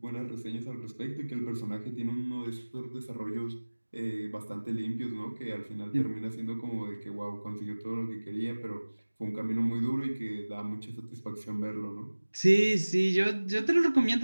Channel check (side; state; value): both; inverted; correlation -1.00